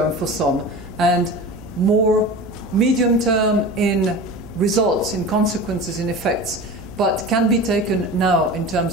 for some and more medium-term in results, in consequences, in effects, but can be taken now in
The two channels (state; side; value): noise; right; hum, 20 dB below the sound